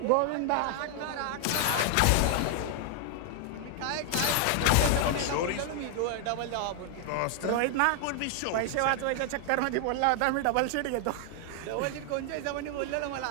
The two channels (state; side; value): different; both; correlation 0.00